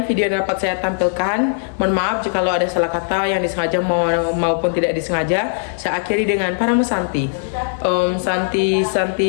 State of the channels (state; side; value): silent; right; digital silence